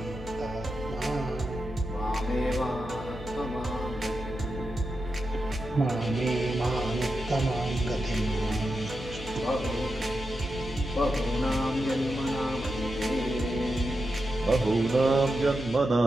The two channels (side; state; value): left; noise; hum, 13 dB below the sound